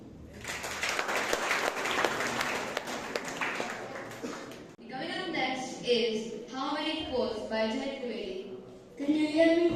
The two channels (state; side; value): identical; both; correlation 1.00